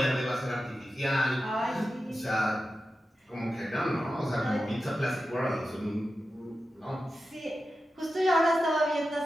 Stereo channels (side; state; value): both; normal; correlation 0.92